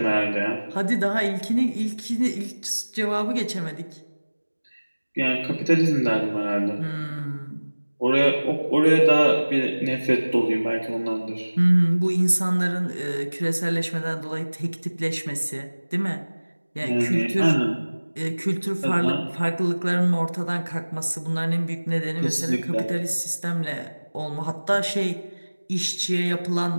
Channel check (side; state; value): both; inverted; correlation -1.00